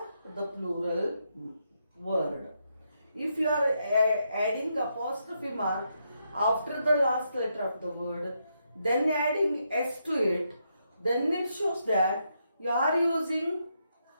the plural word. If you are adding apostrophe mark after the last letter of the word, then adding s to it, then it shows that you are using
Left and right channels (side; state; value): both; inverted; correlation -0.80